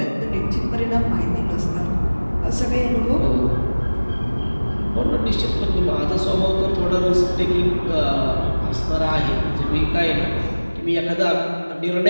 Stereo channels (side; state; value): both; inverted; correlation -1.00